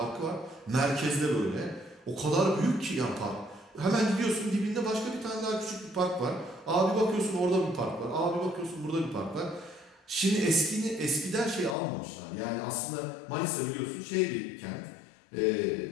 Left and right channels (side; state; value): right; drops out; at 11.8 s